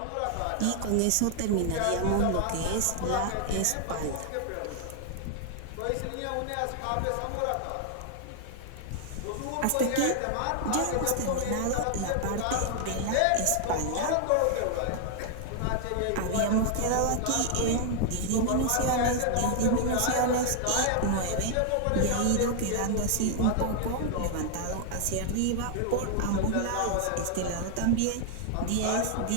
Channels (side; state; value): both; different; correlation 0.00